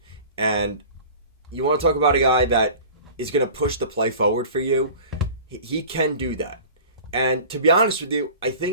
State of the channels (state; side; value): inverted; both; correlation -0.40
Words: And you want to talk about a guy that is going to push the play forward for you, he can do that. And to be honest with you, I